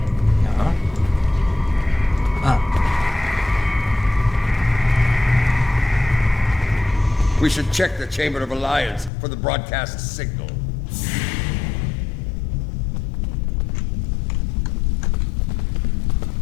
Ja. Ah. We should check the Chamber of Alliance for the broadcast signal.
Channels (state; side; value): drops out; right; at 9.1 s